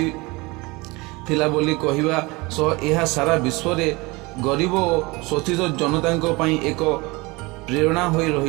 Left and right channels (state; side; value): quieter; left; 24.4 dB